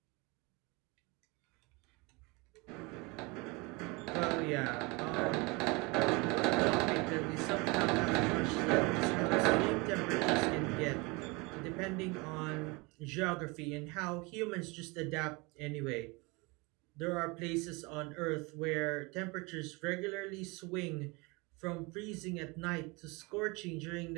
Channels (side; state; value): left; quieter; 26.7 dB